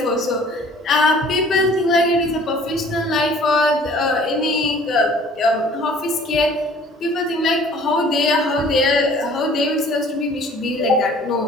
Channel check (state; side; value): normal; both; correlation 0.52